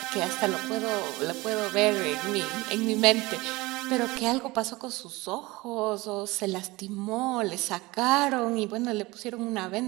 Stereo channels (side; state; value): left; quieter; 21.6 dB